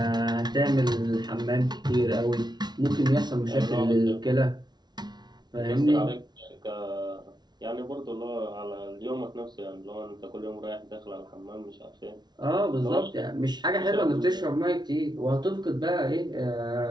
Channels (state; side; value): late; left; 0.20 ms